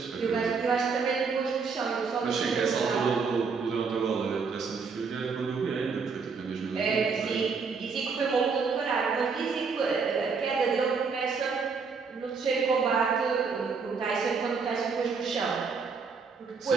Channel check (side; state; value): left; quieter; 5.2 dB